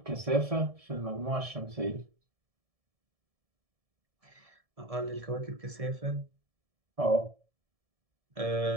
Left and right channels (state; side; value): late; left; 1.7 ms